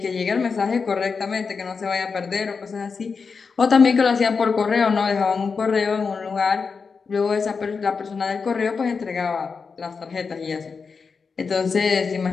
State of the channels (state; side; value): quieter; right; 5.2 dB